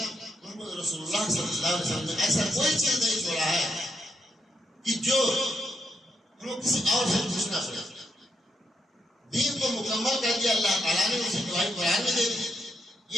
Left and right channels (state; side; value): normal; both; correlation 0.80